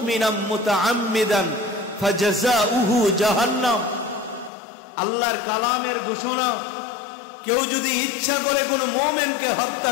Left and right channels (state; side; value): drops out; right; at 4.5 s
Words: মুতাআম্মিদান ফাজাযাউহু জাহান্নাম। আল্লাহর কালামের ঘোষণা, কেউ যদি ইচ্ছা করে কোনো মুমিনকে হত্যা